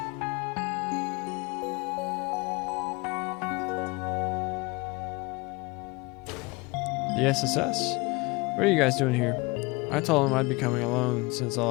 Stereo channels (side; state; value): right; quieter; 25.4 dB